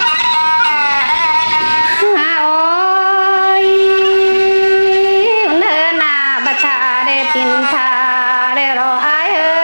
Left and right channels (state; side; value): inverted; both; correlation -1.00